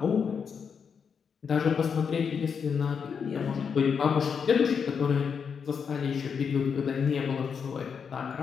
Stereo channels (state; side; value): quieter; right; 6.5 dB